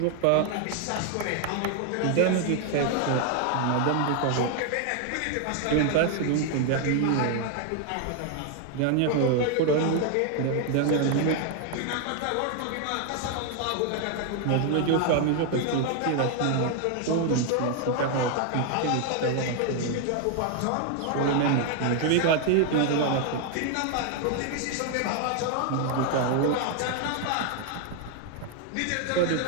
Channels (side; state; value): both; different; correlation 0.00